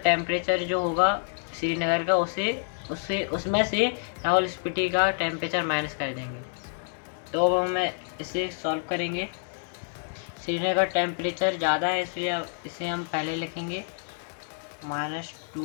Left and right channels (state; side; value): silent; right; 59 dB below the other